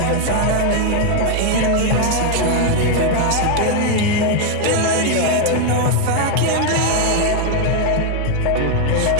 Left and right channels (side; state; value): both; different; correlation 0.01